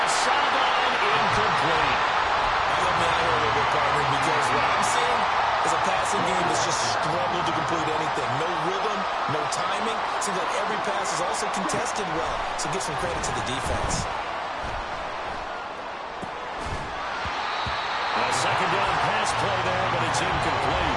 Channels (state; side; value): identical; both; correlation 1.00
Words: sideline, incomplete. Help me out here a little bit, partner, because what I'm seeing is a passing game that's just struggled to complete anything. No rhythm, no timing. Seems like every pass is also contested well, so give some credit to the defense. A 2nd down pass play there, but it's